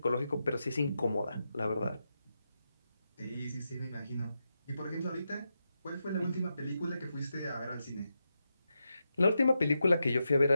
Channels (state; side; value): inverted; both; correlation -0.87